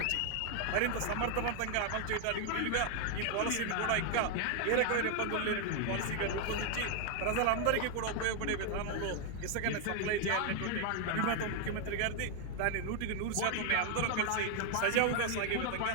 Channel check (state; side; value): different; both; correlation 0.00